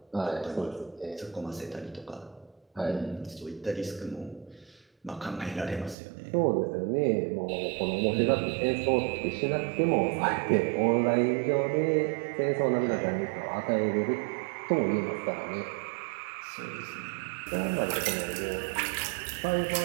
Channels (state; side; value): drops out; left; at 6.0 s